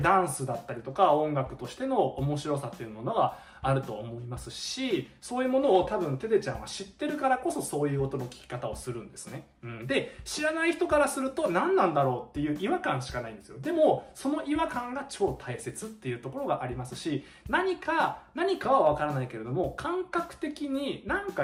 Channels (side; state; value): both; identical; correlation 1.00